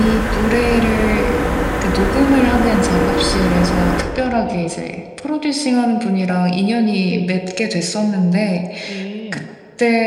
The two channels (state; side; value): identical; both; correlation 1.00